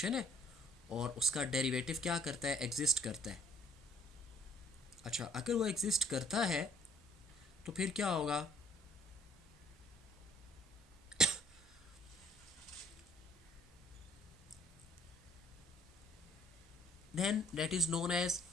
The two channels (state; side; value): normal; both; correlation 0.62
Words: है और उसका डेरिवेटिव क्या करता है? एग्जिस्ट करता है. अच्छा, अगर वो एग्जिस्ट करता है तो फिर क्या होगा? Then that is known as